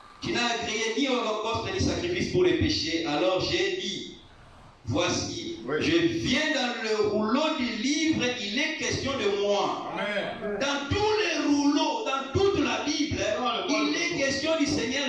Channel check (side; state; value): both; identical; correlation 1.00